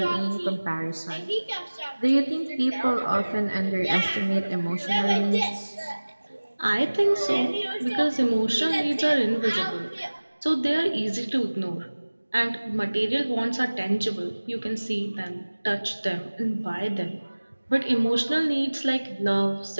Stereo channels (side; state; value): both; inverted; correlation -1.00